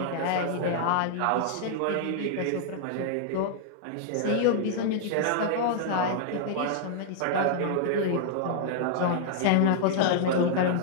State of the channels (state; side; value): different; both; correlation -0.01